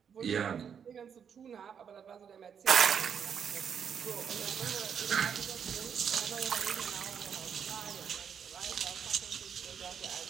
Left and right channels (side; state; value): left; quieter; 7.5 dB